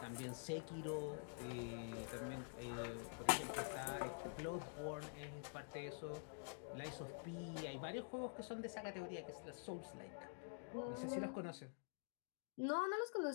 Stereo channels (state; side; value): silent; right; digital silence